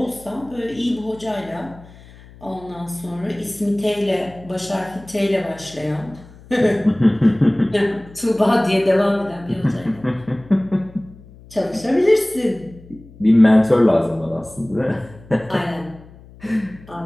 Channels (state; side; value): noise; left; hum, 22 dB below the sound